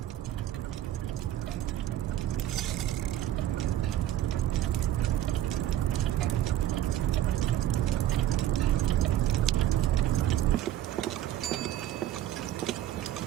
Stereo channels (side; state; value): left; quieter; 12.6 dB